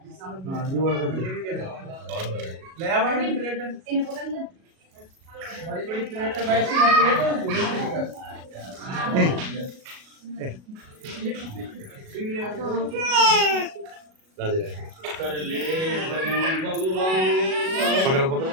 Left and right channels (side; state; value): left; late; 37 ms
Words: हाँ ये वाला कर दे। ले आ बड़ी प्लेट इन्हें पकड़ ले बड़ी बड़ी प्लेट है वैसी है प्लेट बड़ी बड़ी का राधे राधे कर ले भजन भगवान पकड़ो पकड़ो